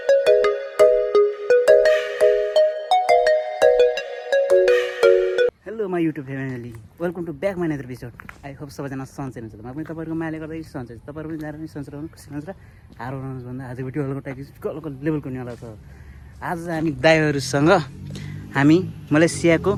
Hello my YouTube family, welcome to back my another episode. I hope सबैजना सन्चै हुनुहुन्छ। म पनि तपाईँहरूको मायाले गर्दा सन्चै छु। तपाईँहरू पनि जानु पनि सन्चै रहनु, खुसी रहनुहोस् र हार्नुहोस् भन्दा आजको भिडियो हल्को टाइप कलको लेभलको हुनेवाला छ। आज हामी दाइहरूसँग हामी मलेसियाको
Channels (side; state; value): both; identical; correlation 1.00